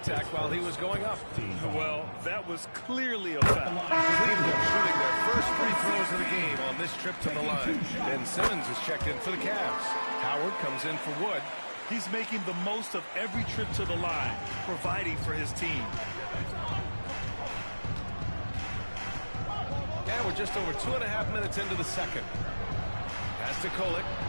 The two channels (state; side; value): inverted; both; correlation -1.00